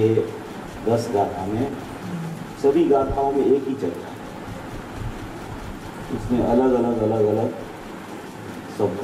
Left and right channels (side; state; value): both; identical; correlation 1.00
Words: 10 गाथा में, सभी गाथाओं में एक ही चर्चा है। उसमें अलग अलग